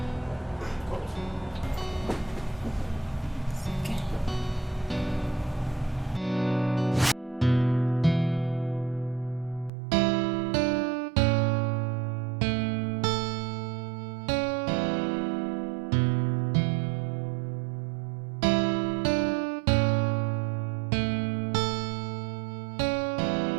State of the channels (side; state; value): left; drops out; at 9.7 s